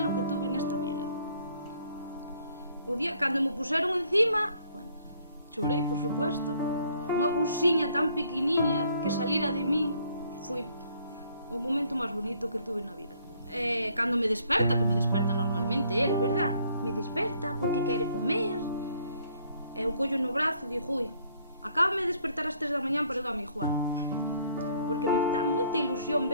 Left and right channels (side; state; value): both; inverted; correlation -0.64